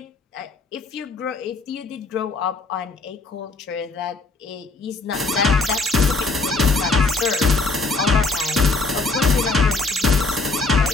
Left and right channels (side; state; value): right; quieter; 3.5 dB